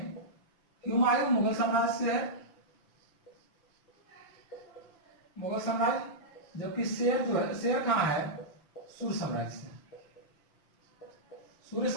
हुमायूं मुगल साम्राज्य से है, मुगल साम्राज्य, जबकि शेर जो है, शेर कहाँ है, सूर्य साम्राज्य से, सूर्य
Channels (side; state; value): right; late; 5.9 ms